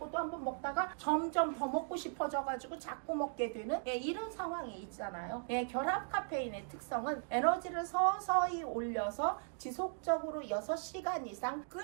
또 한번 먹다가 점점 더 먹고 싶어져가지고 자꾸 먹게 되는 이런 상황이 있잖아요. 결합 카페인의 특성은 에너지를 서서히 올려서 지속적으로 6시간 이상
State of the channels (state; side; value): silent; left; digital silence